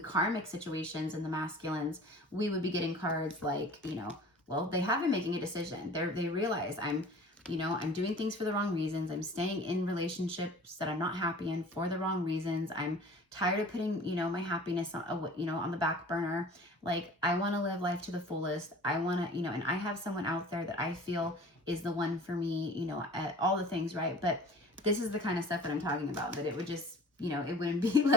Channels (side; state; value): both; normal; correlation 0.43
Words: karmic situations and the masculines, we would be getting cards like, you know, well, they have been making a decision. They realize I'm doing things for the wrong reasons. I'm staying in relationships that I'm not happy in for the wrong reasons. I'm tired of putting, you know, my happiness on, you know, on the back burner. Like, I want to live life to the fullest. I want to, you know, and I have someone out there that I feel is the one for me, you know, at all the things, right? But this is the kind of stuff that I'm talking about, that it would just, you know, it wouldn't be